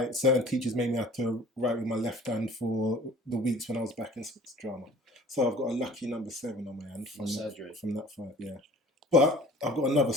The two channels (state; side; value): normal; both; correlation 0.47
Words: Certain teachers made me have to write with my left hand for the weeks when I was back in sports drama. So I've got a lucky number 7 on my hand from surgery. From that fight, yeah. But I've got another